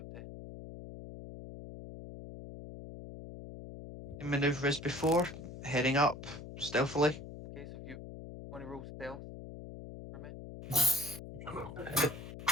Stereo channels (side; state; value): left; noise; hum, 12 dB below the sound